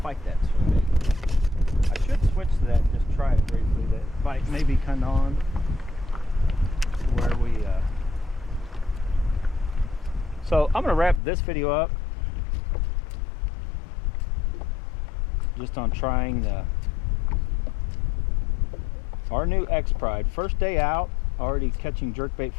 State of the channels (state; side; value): drops out; right; at 11.2 s